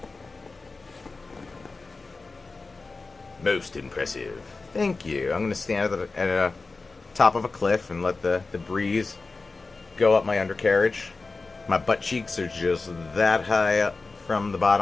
Most impressive. Thank you. I'm going to stand at the top of a cliff and let the breeze go up my undercarriage. My butt cheeks are just that high up from the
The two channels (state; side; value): quieter; right; 3.8 dB